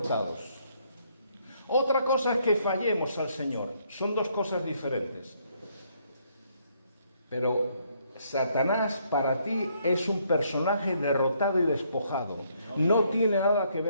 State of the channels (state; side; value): inverted; both; correlation -0.70